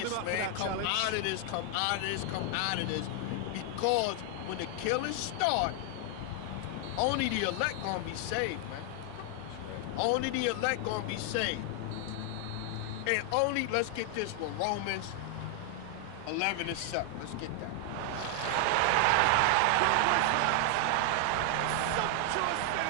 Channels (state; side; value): different; both; correlation 0.00